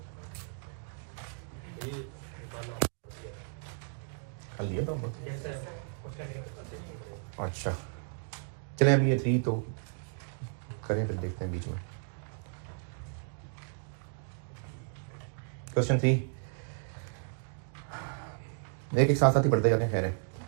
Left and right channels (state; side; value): silent; left; 55 dB below the other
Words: कर लिया तो अच्छा चलें, अभी ये 3 तो करें, फिर देखते हैं बीच में। क्वेश्चन 3 एक साथ साथ ही पढ़ते जाते हैं। खैर है,